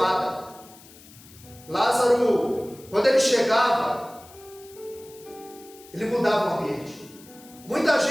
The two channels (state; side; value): noise; left; hiss, 22 dB below the sound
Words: Lázaro, quando ele chegava, ele mudava o ambiente. Muita